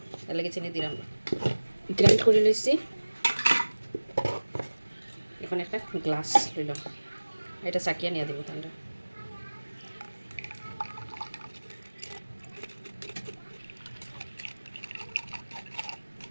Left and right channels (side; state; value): both; inverted; correlation -1.00